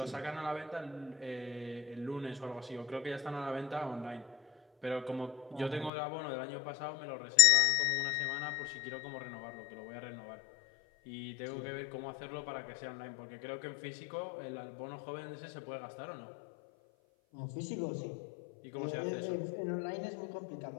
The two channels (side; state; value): right; drops out; at 5.9 s